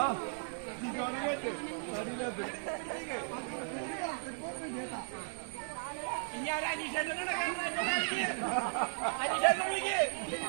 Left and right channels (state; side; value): silent; left; digital silence